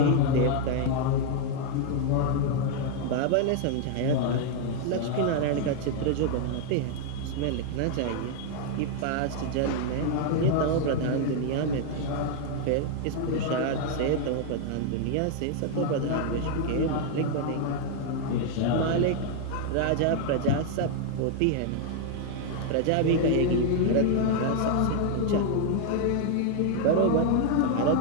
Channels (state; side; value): different; both; correlation 0.00